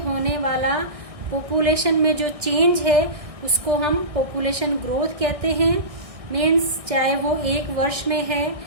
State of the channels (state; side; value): late; left; 1.6 ms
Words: वाला पॉपुलेशन में जो चेंज है उसको हम पॉपुलेशन ग्रोथ कहते हैं। मीन्स चाहे वो एक वर्ष में है